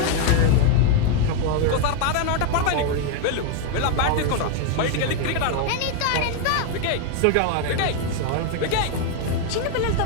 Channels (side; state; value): both; different; correlation 0.00